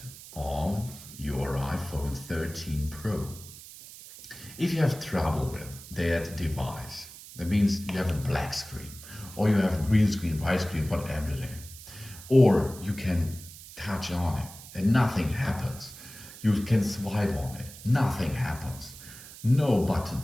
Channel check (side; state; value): right; noise; hiss, 16 dB below the sound